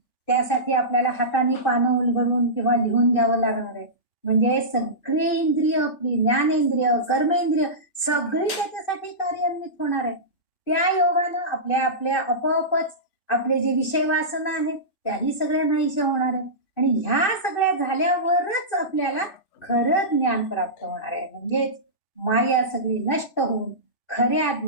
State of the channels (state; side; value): late; right; 2.5 ms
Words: त्यासाठी आपल्याला हाताने पानं उलगडून किंवा लिहून घ्यावं लागणार आहे. म्हणजे सगळी इंद्रिय, आपली ज्ञानेंद्रिय, कर्मेंद्रिय सगळी त्याच्यासाठी कार्यान्वित होणार आहे. त्या योगानं आपल्या आपोआपच आपले जे विषय वासना आहेत त्याही सगळ्या नाहीशा होणार आहे. आणि ह्या सगळ्या झाल्यावरच आपल्याला खरं ज्ञान प्राप्त होणार आहे. म्हणजेच माया सगळी नष्ट होऊन खऱ्या